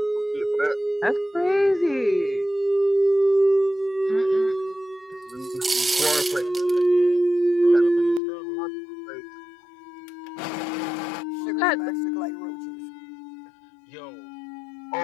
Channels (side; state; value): right; drops out; at 8.2 s